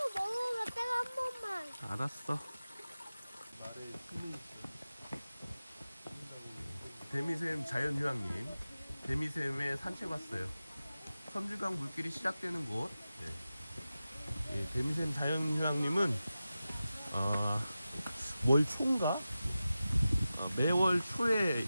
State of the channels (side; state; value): both; inverted; correlation -0.94